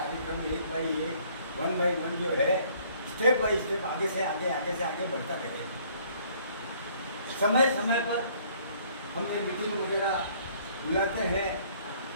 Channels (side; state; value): both; inverted; correlation -0.60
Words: 1 बाई 1, 1 बाई 1 जो है, स्टेप बाई स्टेप आगे से आगे बढ़ता रहेगा। समय समय पर हम ये मीटिंग वगैरह बुलाते हैं